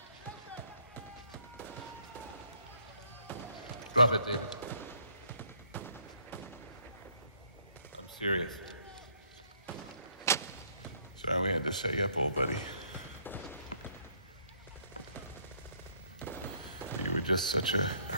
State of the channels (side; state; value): both; inverted; correlation -0.66